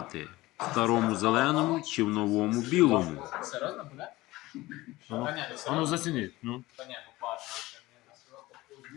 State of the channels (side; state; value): right; quieter; 18.9 dB